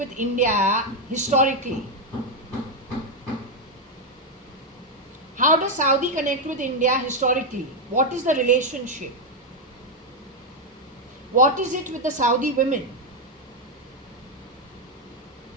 India historically? How does Saudi connect with India historically? What is the relationship? What is it with the Saudi women?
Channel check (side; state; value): both; normal; correlation 0.03